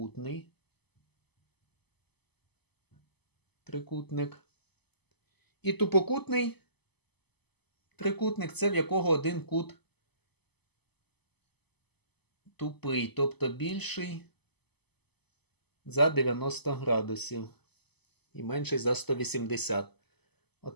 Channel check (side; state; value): right; late; 0.98 ms